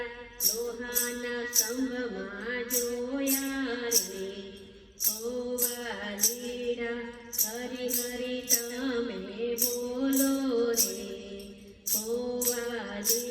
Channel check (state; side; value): identical; both; correlation 1.00